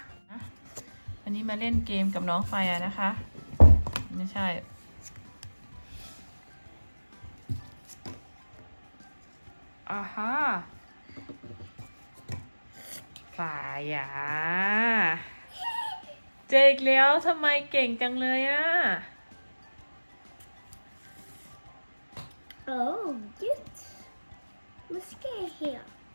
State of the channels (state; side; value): inverted; both; correlation -1.00